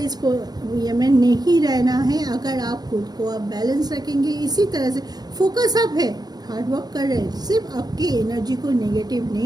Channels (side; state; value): left; late; 0.19 ms